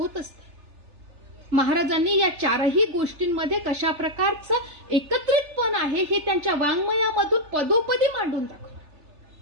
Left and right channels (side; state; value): left; late; 3.4 ms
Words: असते. महाराजांनी या चारही गोष्टींमध्ये कशा प्रकारचं एकत्रितपण आहे हे त्यांच्या वाङ्मयामधून पदोपदी मांडून दाखवलं.